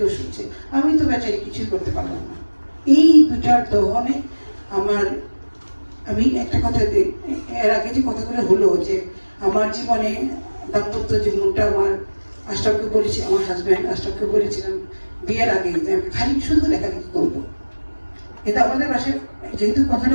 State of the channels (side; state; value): both; inverted; correlation -1.00